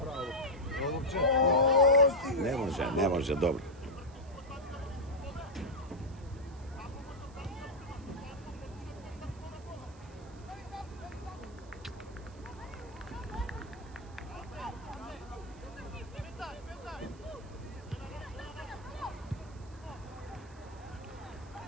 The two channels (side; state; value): right; noise; hiss, 26 dB below the sound